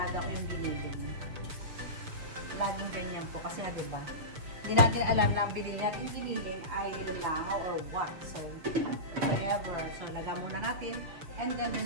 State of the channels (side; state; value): left; late; 6.5 ms